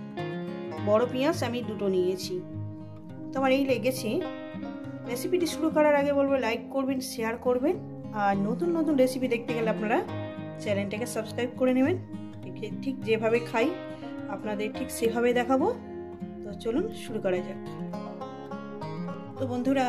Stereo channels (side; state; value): both; identical; correlation 1.00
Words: বড় পেঁয়াজ আমি 2টো নিয়েছি। তো আমার এই লেগেছে। রেসিপিটি শুরু করার আগে বলবো লাইক করবেন, শেয়ার করবেন, আর নতুন নতুন রেসিপি দেখতে গেলে আপনারা চ্যানেলটাকে সাবস্ক্রাইব করে নেবেন। ঠিক যেভাবে খাই আপনাদের ঠিক সেভাবে দেখাবো। তো চলুন শুরু করা যাক। তো বন্ধুরা